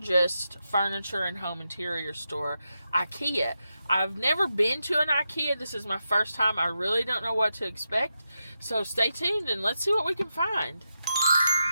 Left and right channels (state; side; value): inverted; both; correlation -0.87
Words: furniture and home interior store, IKEA. I've never been to an IKEA. This is my first time. I really don't know what to expect. So stay tuned and let's see what we can find.